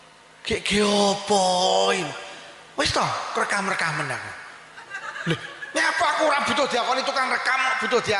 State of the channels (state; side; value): identical; both; correlation 1.00